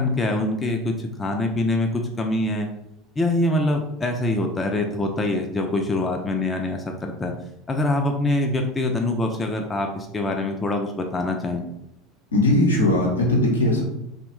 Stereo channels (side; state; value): both; normal; correlation 0.35